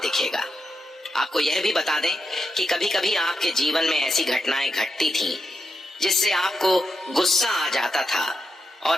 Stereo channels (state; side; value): normal; both; correlation 0.85